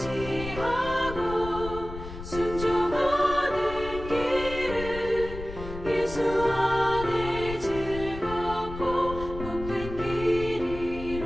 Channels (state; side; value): noise; left; rumble, 10 dB below the sound